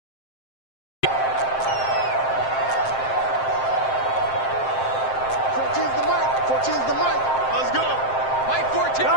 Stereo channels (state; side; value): late; right; 7.6 ms